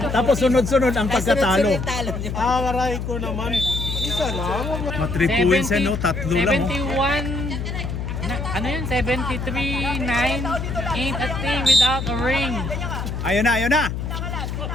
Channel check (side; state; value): left; noise; hum, 4 dB below the sound